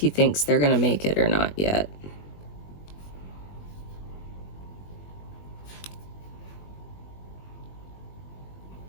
thinks they're gonna make it or not yet.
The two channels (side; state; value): right; late; 21 ms